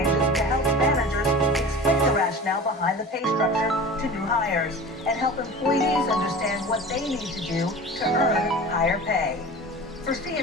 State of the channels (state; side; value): normal; both; correlation 0.36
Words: to help managers explain the rationale behind the pay structure to new hires and help employees understand what they need to do to earn higher pay. For